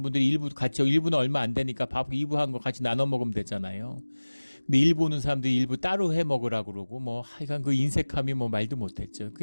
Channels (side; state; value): both; inverted; correlation -1.00